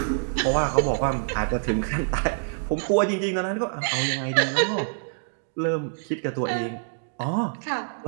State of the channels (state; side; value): silent; left; digital silence